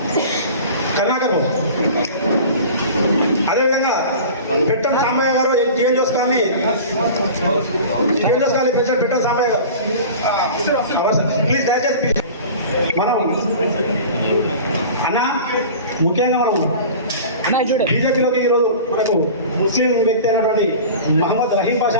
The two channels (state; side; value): inverted; both; correlation -0.38